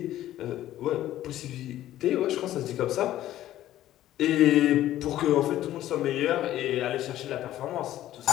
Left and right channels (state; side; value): quieter; right; 13.4 dB